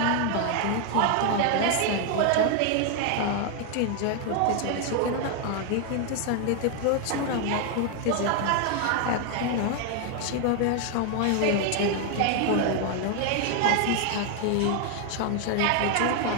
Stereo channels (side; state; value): both; different; correlation 0.01